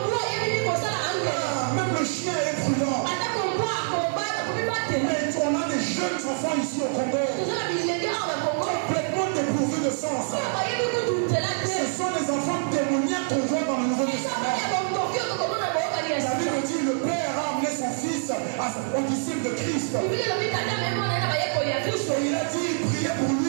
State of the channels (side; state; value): left; silent; digital silence